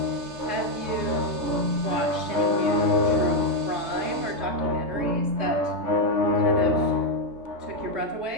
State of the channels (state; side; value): late; left; 3.3 ms